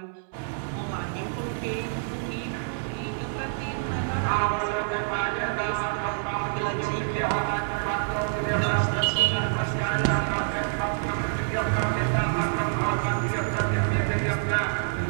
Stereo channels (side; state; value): left; silent; digital silence